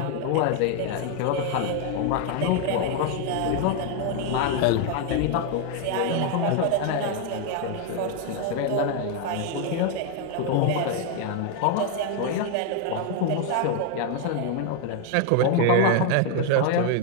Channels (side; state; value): both; different; correlation 0.01